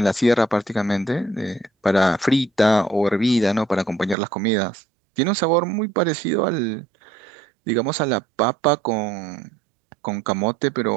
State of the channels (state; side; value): drops out; left; at 4.2 s